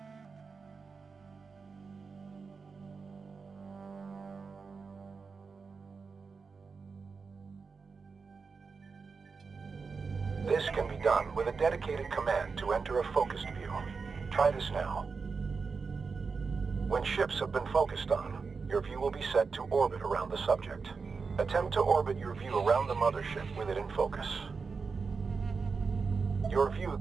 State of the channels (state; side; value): quieter; left; 4.9 dB